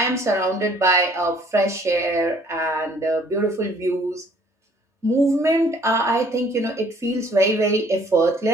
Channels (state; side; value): normal; both; correlation 0.58